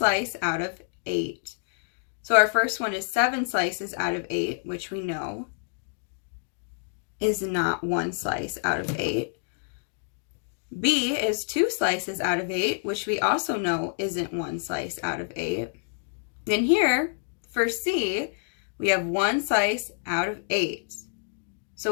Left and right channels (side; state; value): right; silent; digital silence